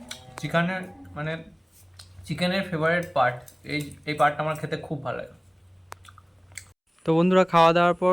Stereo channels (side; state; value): both; identical; correlation 1.00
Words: চিকেনের মানে চিকেনের ফেভারিট পার্ট এই পার্টটা আমার খেতে খুব ভালো লাগে। তো বন্ধুরা, খাওয়া দাওয়ার পর